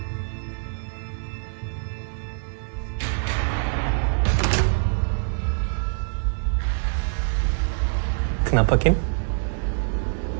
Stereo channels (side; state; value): left; silent; 57 dB below the other